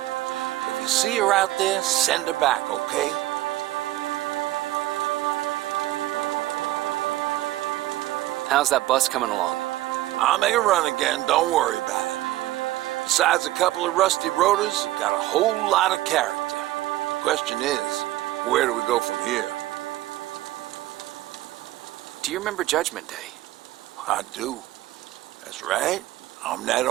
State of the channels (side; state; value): left; quieter; 16.4 dB